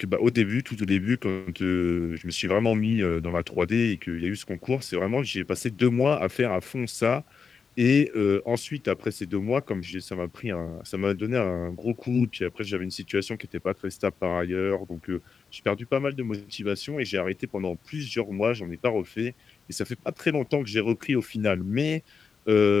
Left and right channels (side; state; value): right; quieter; 5.6 dB